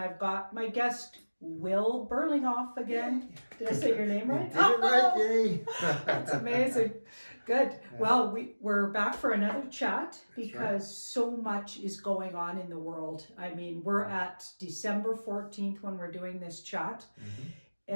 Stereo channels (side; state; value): both; inverted; correlation -1.00